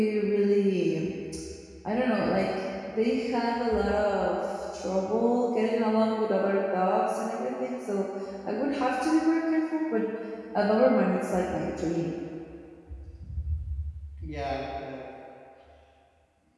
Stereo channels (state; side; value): identical; both; correlation 1.00